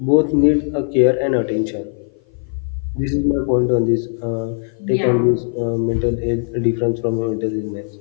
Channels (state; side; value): silent; right; 55 dB below the other